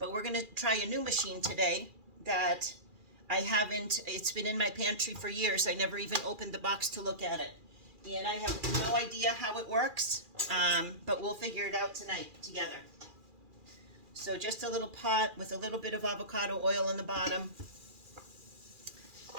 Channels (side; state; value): left; late; 2.4 ms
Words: we're going to try a new machine today that I haven't, it's been in my pantry for years. I never even opened the box to look at it. And I have no idea how it works, but we'll figure it out tonight together. So just a little pot with a little bit of avocado oil in the bottom.